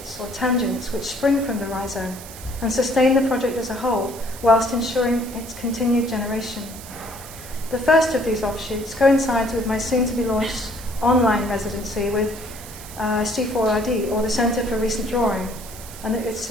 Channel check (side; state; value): right; noise; hiss, 15 dB below the sound